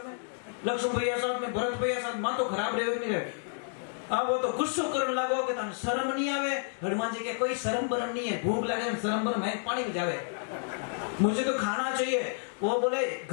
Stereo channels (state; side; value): silent; right; digital silence